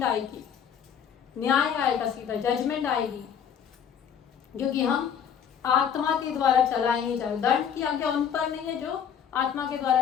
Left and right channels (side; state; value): right; quieter; 8.1 dB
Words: आएगी, न्याय आएगा, सीधा जजमेंट आएगी, क्योंकि हम आत्मा के द्वारा चलाए नहीं जाते। दंड की आज्ञा उन पर नहीं है जो आत्मा के